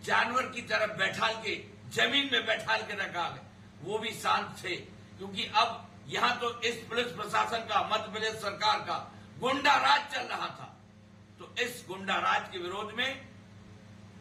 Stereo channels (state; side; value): identical; both; correlation 1.00